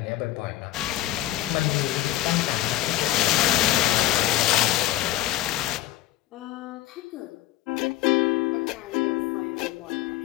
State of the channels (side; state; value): right; quieter; 14.3 dB